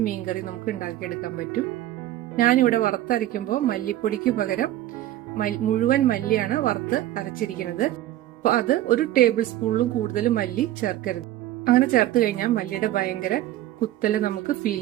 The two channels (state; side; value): quieter; left; 14.1 dB